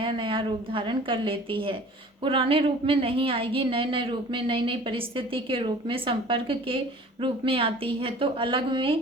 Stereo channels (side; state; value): both; normal; correlation 0.46